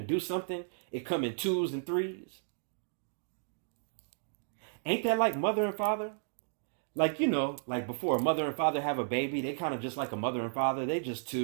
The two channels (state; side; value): silent; left; digital silence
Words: do something, it come in twos and threes. Ain't that like mother and father? Like, you know, like before a mother and father have a baby, they kind of just like a mother and father. They just